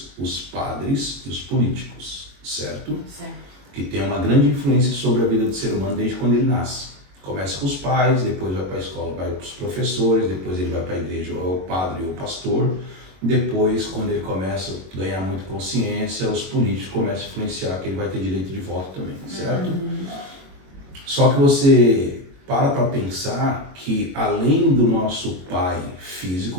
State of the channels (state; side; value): late; left; 22 ms